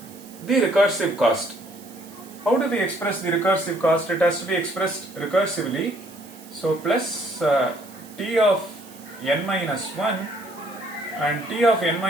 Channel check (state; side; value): noise; right; hiss, 21 dB below the sound